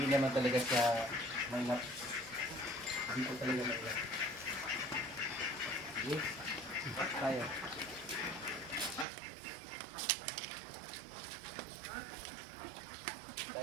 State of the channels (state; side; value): drops out; left; at 9.1 s